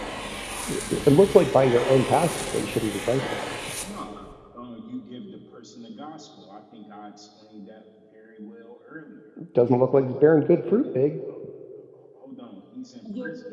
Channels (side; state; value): both; identical; correlation 1.00